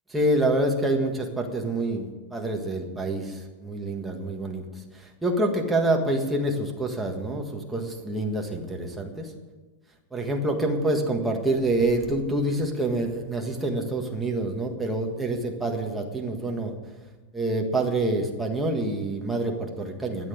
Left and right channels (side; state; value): both; normal; correlation 0.37